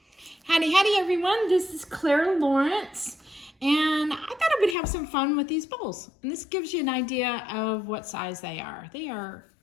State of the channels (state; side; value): drops out; right; at 4.8 s